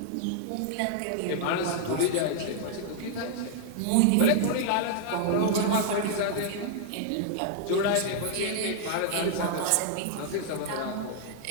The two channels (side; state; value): both; different; correlation -0.01